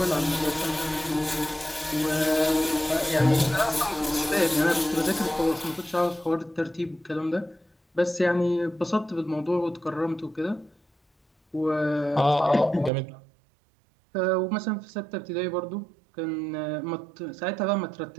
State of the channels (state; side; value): drops out; left; at 12.9 s